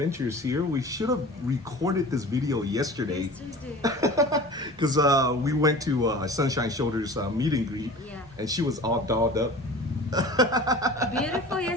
here. We should have recorded this video yesterday. Because we went to Sunshine Shoulders meet and greet. Yeah. And she was all dolled up. Beautiful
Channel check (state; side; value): normal; both; correlation 0.39